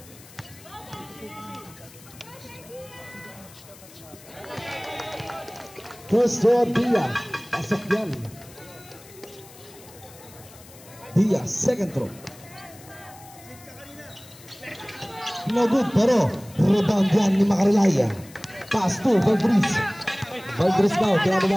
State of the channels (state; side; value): noise; left; hiss, 21 dB below the sound